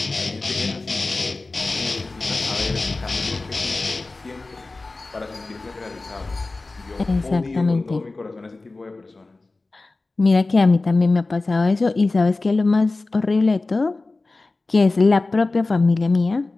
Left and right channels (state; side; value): quieter; right; 3.4 dB